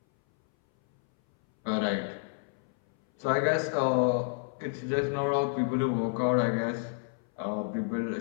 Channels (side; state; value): right; silent; 58 dB below the other